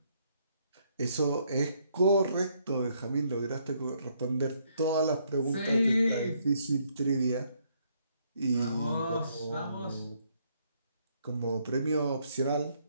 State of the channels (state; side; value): inverted; both; correlation -0.71